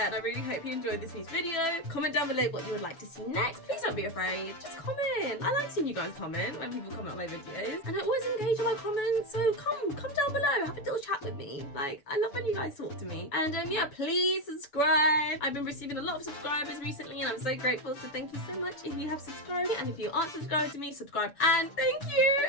and I really hope you enjoyed this week's video. Comment down below what you would like to see next. Please don't be afraid. Just comment. I like seeing you guys comment when people comment on my videos, and I always engage in my comments, so come down below. Have a little chat with me. Like, I love when you guys talk to me. And yeah, please subscribe. I've been receiving a lot of subscribers recently, and I'm so grateful, so thank you so much if you have subscribed. And if you aren't subscribed to me, subscribe. And thank you.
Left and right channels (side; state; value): right; late; 7.0 ms